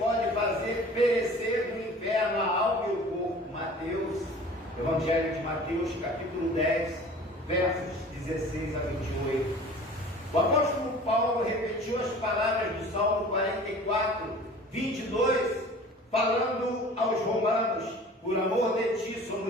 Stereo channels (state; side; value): normal; both; correlation 0.44